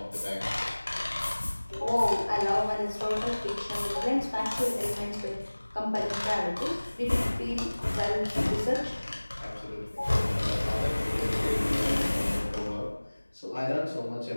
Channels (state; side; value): inverted; both; correlation -1.00